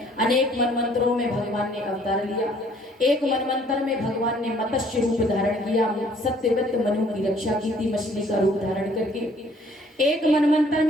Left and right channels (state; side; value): normal; both; correlation 0.59